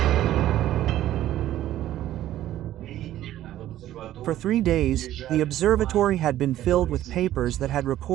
For 3 days, the observatory had been filled with papers that had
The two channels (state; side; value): quieter; left; 13.2 dB